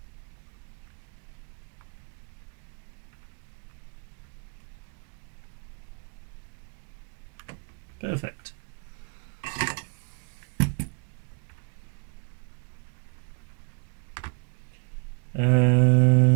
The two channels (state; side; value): quieter; left; 37.4 dB